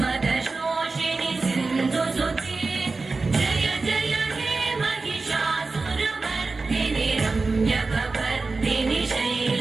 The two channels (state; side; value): quieter; left; 3.8 dB